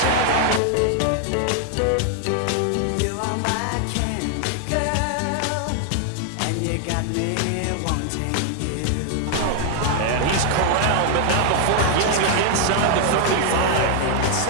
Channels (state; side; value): different; both; correlation 0.00